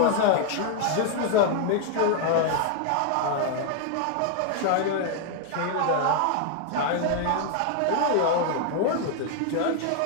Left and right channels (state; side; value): different; both; correlation 0.00